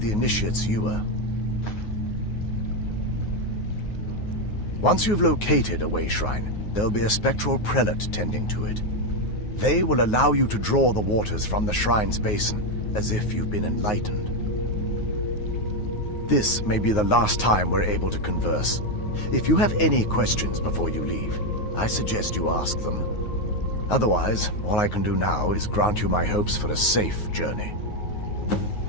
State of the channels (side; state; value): right; late; 9.5 ms